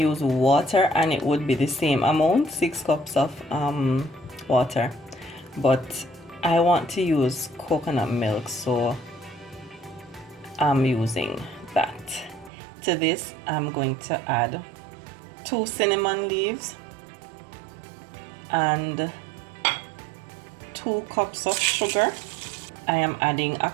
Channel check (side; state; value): left; drops out; at 12.5 s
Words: water and it would be the same amount, 6 cups of water, but I want to use coconut milk, so I'm using that. To this I'm going to add 2 cinnamon leaves and 2 cups of sugar. I am adding a